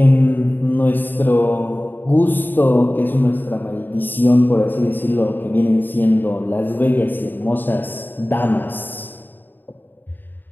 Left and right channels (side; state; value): right; late; 0.092 ms